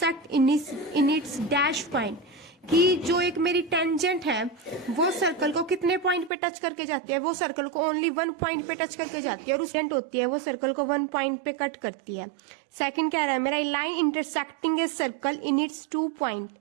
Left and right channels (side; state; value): left; drops out; at 6.3 s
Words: in its dash point, कि जो एक मेरी टेंजेंट है वो सर्कल को कितने पॉइंट पे टच करके जाती है? वो सर्कल को ओनली 1 पॉइंट पे टच करके जाती है, और उस होती है वो सर्कल को 1 पॉइंट पे कट करती है। सेकंड कह रहा है मेरा line intersecting a circle in its 2 point